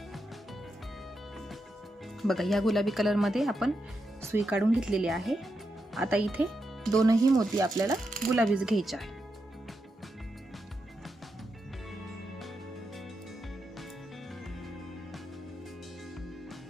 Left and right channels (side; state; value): both; normal; correlation 0.85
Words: बघा या गुलाबी कलर मध्ये आपण सुई काढून घेतलेली आहे. आता इथे दोनही मोती आपल्याला गुलाबीच घ्यायचे आहे.